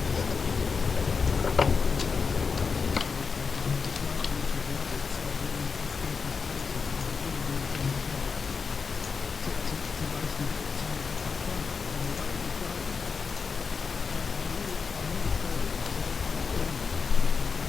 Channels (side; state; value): right; quieter; 5.2 dB